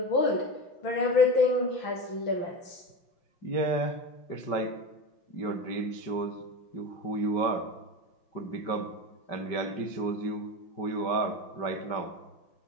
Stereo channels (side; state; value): right; late; 5.2 ms